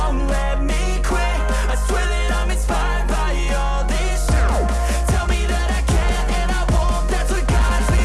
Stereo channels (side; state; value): both; identical; correlation 1.00